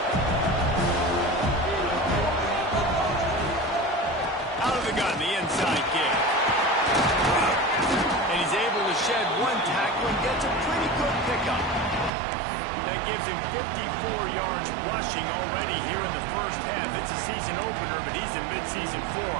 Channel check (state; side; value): drops out; left; at 12.1 s